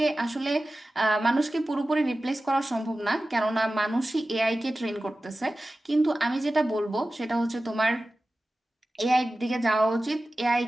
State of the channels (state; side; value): normal; both; correlation 0.95